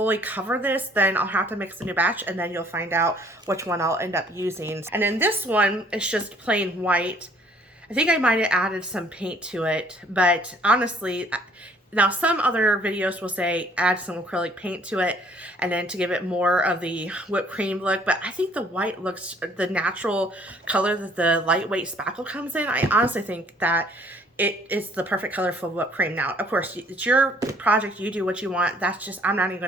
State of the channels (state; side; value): normal; both; correlation 0.59